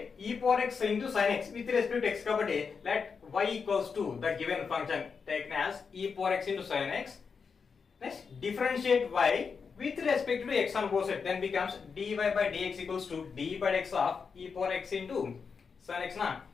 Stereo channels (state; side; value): quieter; right; 5.6 dB